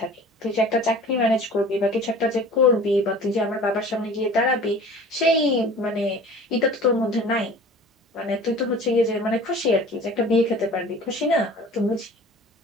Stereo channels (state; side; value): normal; both; correlation 0.43